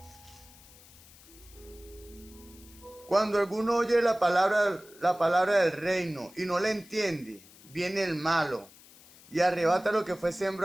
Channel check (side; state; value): left; noise; hiss, 23 dB below the sound